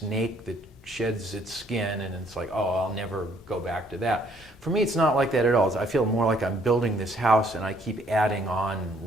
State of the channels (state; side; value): noise; left; hum, 29 dB below the sound